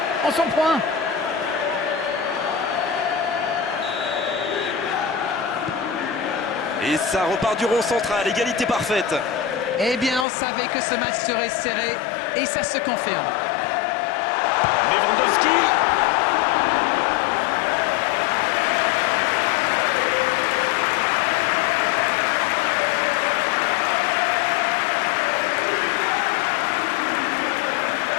on s'en prend. Et ça repart du rond central, égalité parfaite. Eh bien, on savait que ce match serait serré et ça se confirme. Lewandowski.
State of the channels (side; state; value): right; drops out; at 10.2 s